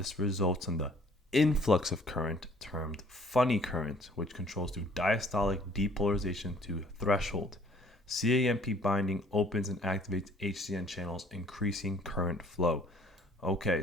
results in the influx of current termed funny current, which controls through diastolic depolarization to threshold. CAMP binding opens and activates HCN channels, increasing current flow. Okay,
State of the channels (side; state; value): both; normal; correlation 0.58